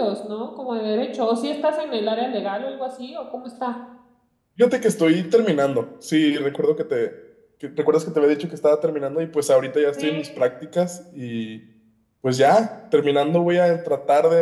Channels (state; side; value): identical; both; correlation 1.00